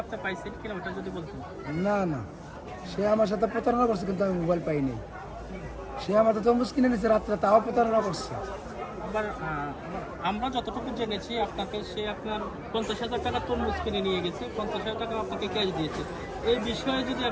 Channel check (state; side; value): identical; both; correlation 1.00